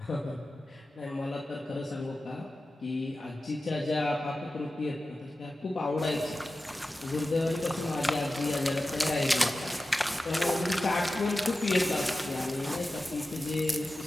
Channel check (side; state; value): both; normal; correlation 0.94